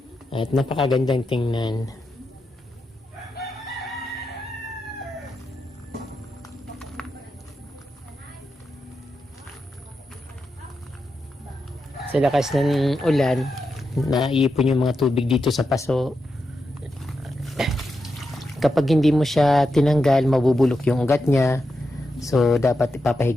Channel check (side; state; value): both; normal; correlation 0.87